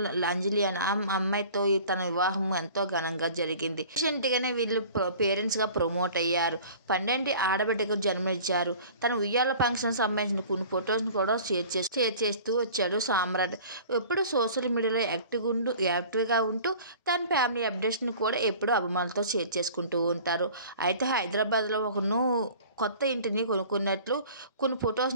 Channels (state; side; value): inverted; both; correlation -0.45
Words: అంజలి అనే అమ్మాయితో తన వివాహం ఎంతో ఘనంగా జరిగింది. రీసెంట్గానే వీళ్ళు పేరెంట్స్గా ప్రమోట్ అయ్యారు. 12 ఆడబిడ్డకు జన్మనిచ్చారు. తన ఉయ్యాల ఫంక్షన్ సంబంధించిన కొన్ని ఫొటోస్ని కూడా షేర్ చేస్తూ వచ్చాడు సామ్రాట్. ఎప్పుడు సోషల్ మీడియాలో యాక్టివ్గా ఉంటూ తన ఫ్యామిలీ అప్డేట్స్ని కూడా ఎప్పుడూ అభిమానులతో షేర్ చేసుకుంటూ ఉంటారు. అయితే హైదరాబాద్లో కొత్త ఇంటిని కొనుక్కున్నట్లు కొన్ని